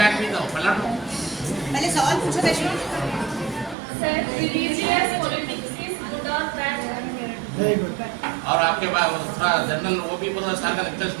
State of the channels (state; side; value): drops out; left; at 3.8 s